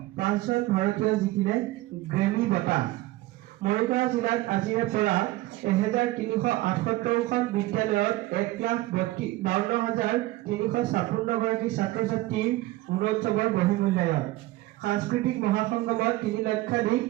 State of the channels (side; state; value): left; quieter; 18.0 dB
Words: 5জন ভাৰতীয় জিকিলে গ্ৰেমী বঁটা মৰিগাঁও জিলাত আজিৰে পৰা 1378খন বিদ্যালয়ত 1,52,356 গৰাকী ছাত্ৰ ছাত্ৰীৰ গুণোৎসৱৰ বহিমূল্যায়ন সাংস্কৃতিক মহাসংগমত 3 লক্ষাধিক